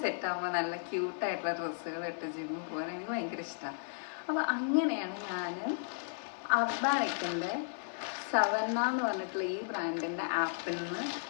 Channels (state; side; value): silent; right; 55 dB below the other